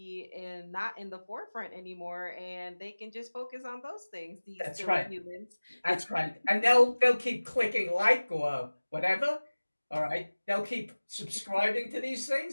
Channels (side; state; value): both; inverted; correlation -1.00